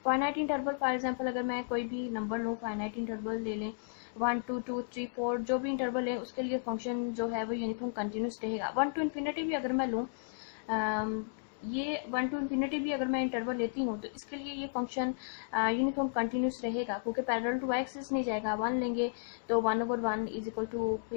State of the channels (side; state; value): right; silent; digital silence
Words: फाइनाइट इंटरवल फॉर एग्जांपल अगर मैं कोई भी नंबर लूँ, फाइनाइट इंटरवल ले लें 1 2 2 3 4 जो भी इंटरवल है उसके लिए फंक्शन जो है वो यूनिफॉर्म कंटिन्यूस रहेगा। 1 to इन्फिनिटी भी अगर मैं लूँ, ये 1 to इन्फिनिटी भी अगर मैं इंटरवल लेती हूँ तो इसके लिए ये फंक्शन यूनिफॉर्म कंटिन्यूस रहेगा क्योंकि पैरेलल टू एक्सिस नहीं जाएगा। 1 लेंगे तो 1/1 इज इक्वल टू